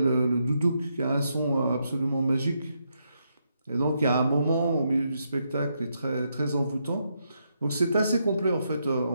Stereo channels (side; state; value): both; inverted; correlation -0.80